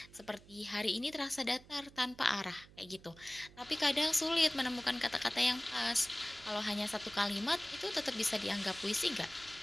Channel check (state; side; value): noise; right; hum, 22 dB below the sound